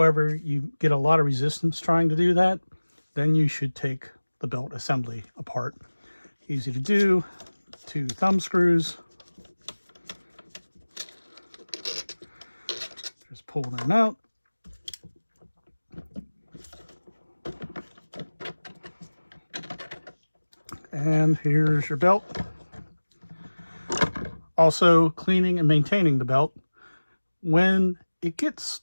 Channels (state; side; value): inverted; both; correlation -1.00